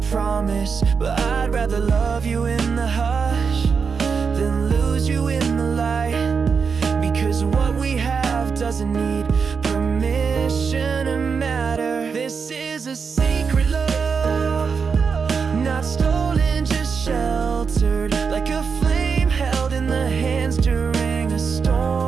promise. But I'd rather love you in the hush than lose you in the light, because what we have doesn't need permission to matter. This is a secret love, not stolen, just sheltered, like a flame held in the hands during a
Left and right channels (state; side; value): quieter; left; 5.7 dB